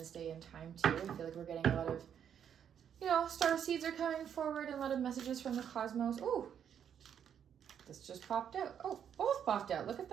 day and time too. I feel like we're getting a lot of, you know, star seeds are coming forward and a lot of messages from the cosmos. Oh, this just popped out. Oh, both popped out. Look at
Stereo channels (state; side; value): quieter; left; 8.6 dB